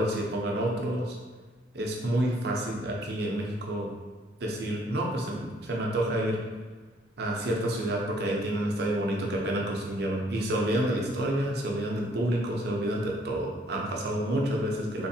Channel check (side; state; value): both; normal; correlation 0.64